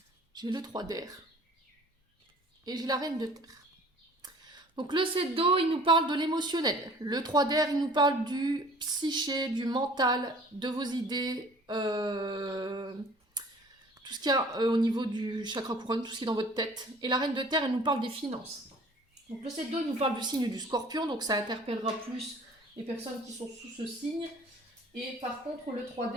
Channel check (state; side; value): normal; both; correlation 0.50